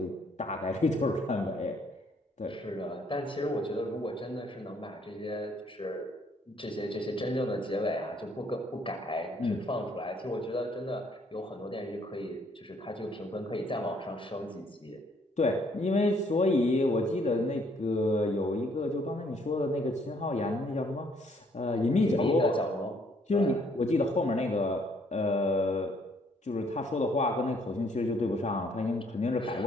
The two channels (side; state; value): both; normal; correlation 0.66